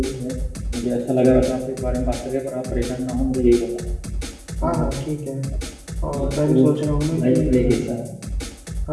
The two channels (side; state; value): both; identical; correlation 1.00